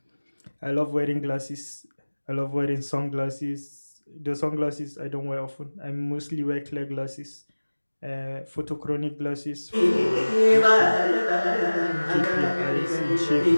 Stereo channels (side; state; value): both; inverted; correlation -1.00